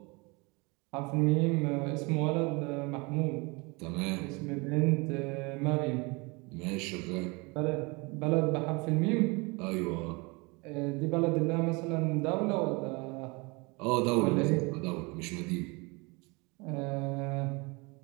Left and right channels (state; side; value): quieter; left; 27.5 dB